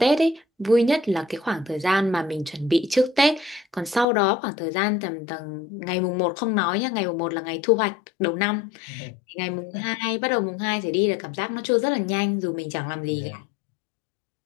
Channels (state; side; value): drops out; right; at 4.0 s